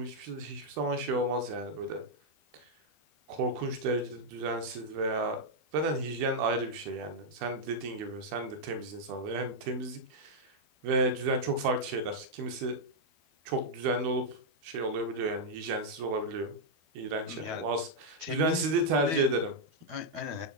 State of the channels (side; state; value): left; late; 12 ms